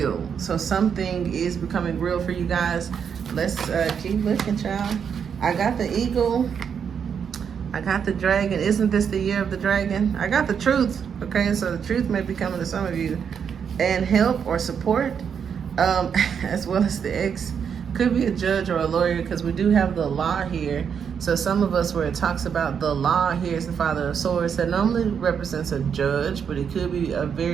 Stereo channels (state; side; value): quieter; left; 7.3 dB